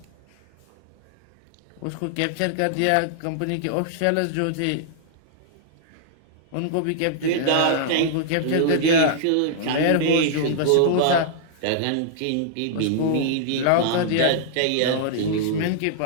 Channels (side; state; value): both; different; correlation -0.01